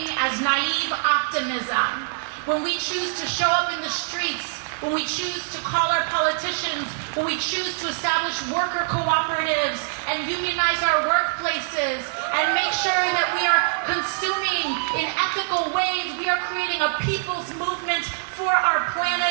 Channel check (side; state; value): left; silent; digital silence